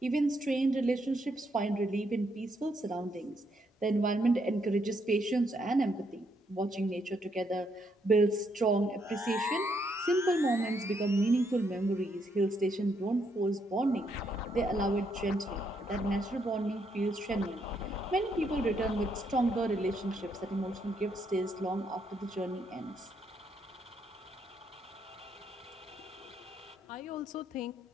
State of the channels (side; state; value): both; normal; correlation 0.75